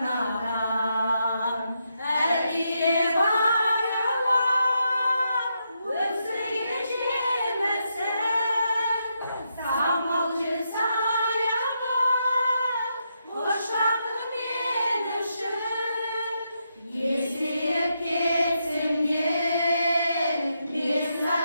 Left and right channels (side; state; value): both; inverted; correlation -0.82